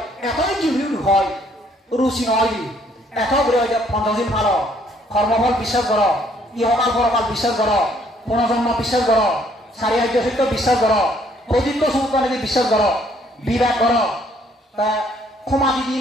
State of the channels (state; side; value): normal; both; correlation 0.65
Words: এতই জিউল হয় রুচি নয় এত করে হয় যে পঞ্চদিন ভালো কর্মফল বিশ্বাস কর ইহকাল পরকাল বিশ্বাস কর পুনর্জন্ম বিশ্বাস কর সারি আর্য সত্য বিশ্বাস কর প্রদীপ্ত সমুদ্র বিশ্বাস কর বিবেক কর তা ক্ষমা দিদি